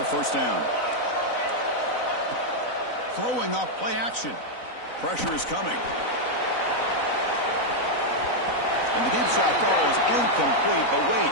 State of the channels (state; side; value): late; right; 4.0 ms